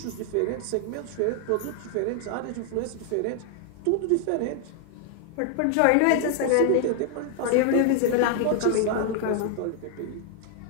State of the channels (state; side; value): different; both; correlation 0.00